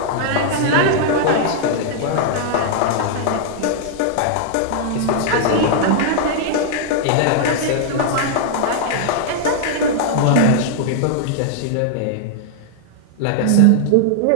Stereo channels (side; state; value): both; different; correlation -0.01